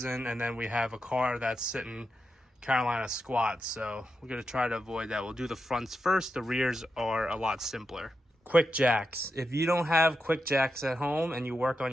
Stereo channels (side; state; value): both; normal; correlation 0.87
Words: and then we have a car that's sitting Carolina squat. So we're gonna try to avoid that. We'll do the fronts first. The rears are a lot simpler. Quick jacks. If you don't have quick jacks at home and you work on